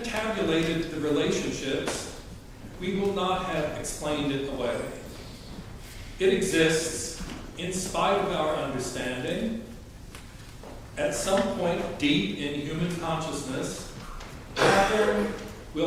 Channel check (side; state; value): both; identical; correlation 1.00